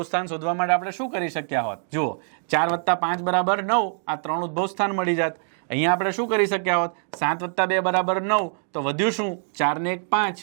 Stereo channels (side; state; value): left; silent; digital silence